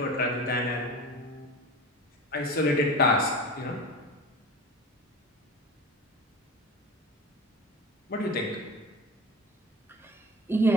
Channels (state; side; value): normal; both; correlation 0.33